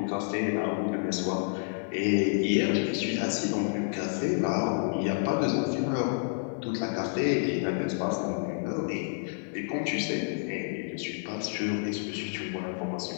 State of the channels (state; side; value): silent; right; digital silence